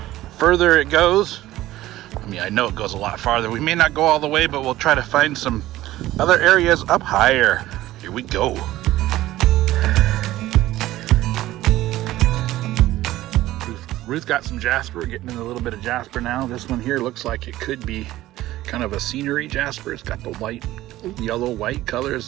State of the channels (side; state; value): left; quieter; 15.7 dB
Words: further it goes. I mean, I know it goes a lot farther. We may not go all the way, but we'll try to find some other areas up higher. Here we go. Ruth got some jasper. We're getting in a little bit of jasper now. This one here looks like it could be kind of a scenery jasper. It's got the white, yellow, white colors